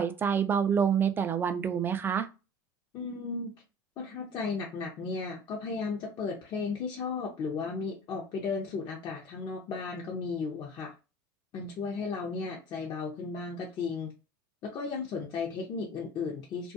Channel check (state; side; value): normal; both; correlation 0.46